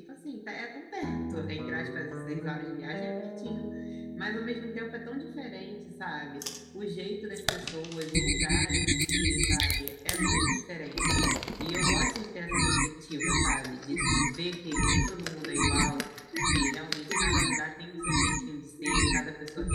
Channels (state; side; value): identical; both; correlation 1.00